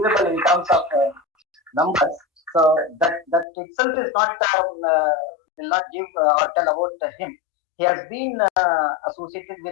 in terms of numbers. So that itself is not, will not give or tell about him. He has been associated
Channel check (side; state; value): right; drops out; at 3.5 s